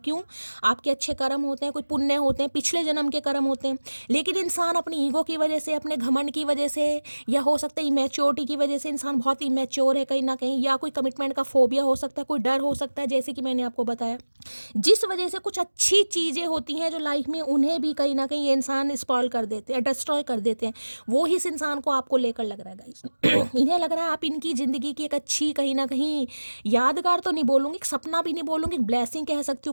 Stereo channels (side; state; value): both; inverted; correlation -1.00